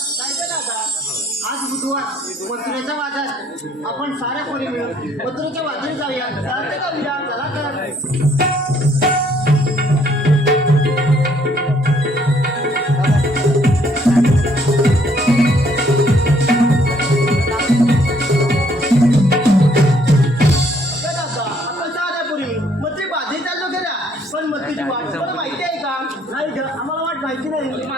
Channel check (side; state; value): both; normal; correlation 0.65